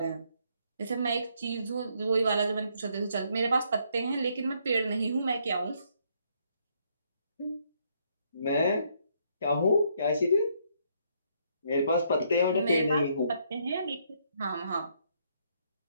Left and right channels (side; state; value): both; inverted; correlation -0.71